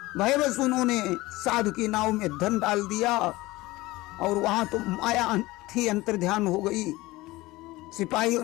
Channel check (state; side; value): quieter; right; 19.7 dB